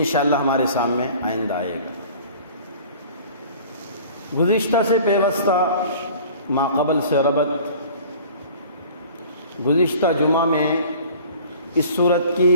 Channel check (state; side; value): inverted; both; correlation -0.46